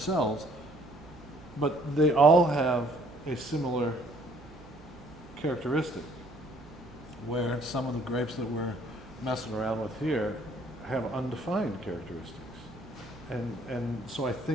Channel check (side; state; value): right; noise; hum, 22 dB below the sound